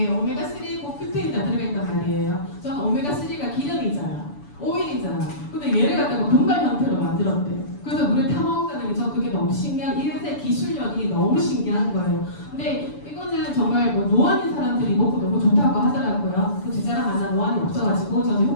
오메가3고 큐테인이 다 들어있단 말이에요. 저는 오메가3가 기름이잖아. 오일이잖아. 근데 얘를 갖다가 분말 형태로 만들었대. 그래서 물에 타먹는다는 게 저 그게 너무 신기한, 이래서 기술력이 너무 신기한 거예요. 근데 이거는 정말 뭐 노안인 사람들이 먹고 너무 좋다고 하더라고요. 그 제 자랑 하나 노안이 없어가지고 저는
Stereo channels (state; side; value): late; right; 6.9 ms